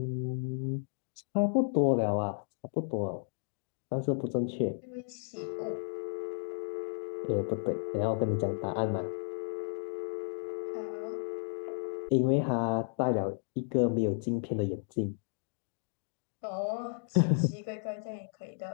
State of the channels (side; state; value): right; silent; digital silence